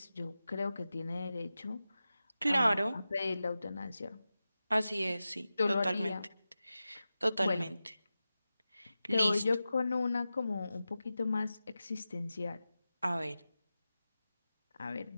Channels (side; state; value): both; inverted; correlation -0.94